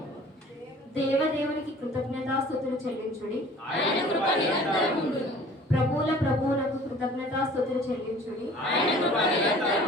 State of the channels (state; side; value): normal; both; correlation 0.49